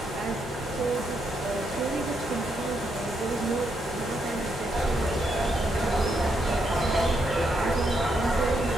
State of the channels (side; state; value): both; normal; correlation 0.78